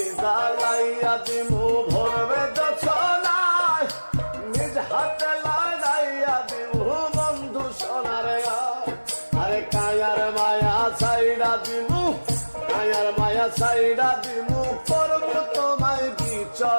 জ্বালাইয়া দিমু ভরবে যছনা, নিজ হাতে লাগাইয়া দিমু বন্ধু সোনার গায়। আরে কায়ার মায়া ছাইড়া দিমু, কায়ার মায়া ছাইড়া দিমু, করবো তোমায়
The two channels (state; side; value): inverted; both; correlation -1.00